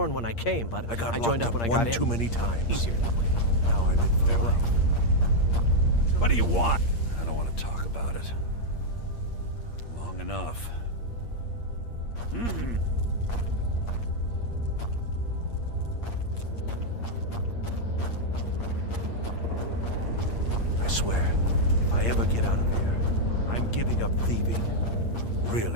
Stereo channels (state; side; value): late; right; 8.6 ms